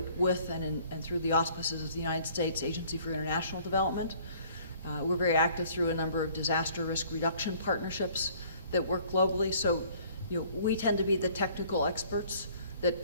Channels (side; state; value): both; inverted; correlation -0.56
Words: with and through the auspices of the United States Agency for International Development. We're very active through a number of disaster risk reduction partnerships that work globally. So, we tend to be the technical experts